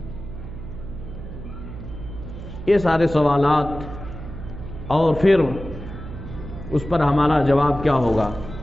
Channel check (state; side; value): noise; right; hum, 11 dB below the sound